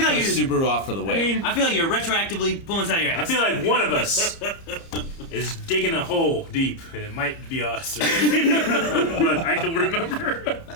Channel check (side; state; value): right; late; 30 ms